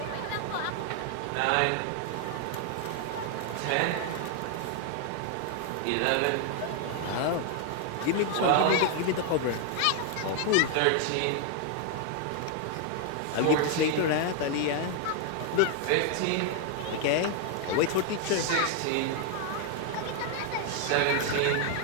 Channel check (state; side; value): different; both; correlation 0.00